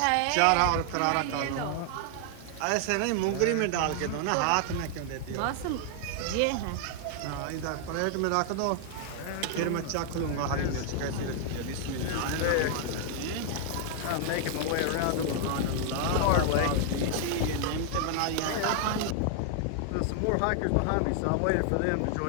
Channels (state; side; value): different; both; correlation 0.00